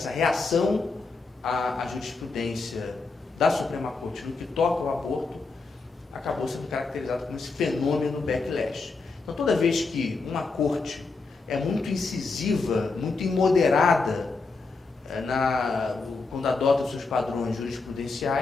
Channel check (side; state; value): right; quieter; 4.0 dB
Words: reação à jurisprudência da Suprema Corte no que toca ao aborto, acabou sendo caracterizado como esse fenômeno backlash. Então, toda vez que uma corte é muito incisiva, muito imoderada quando adota os seus padrões